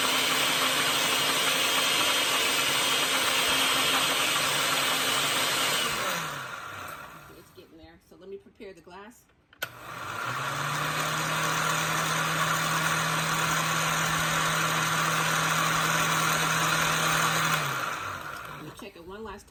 So let me prepare the glass. Let me check it one last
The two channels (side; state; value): both; identical; correlation 1.00